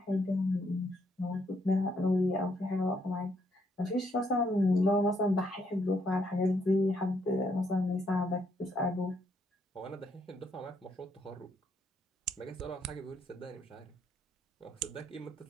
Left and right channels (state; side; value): normal; both; correlation 0.73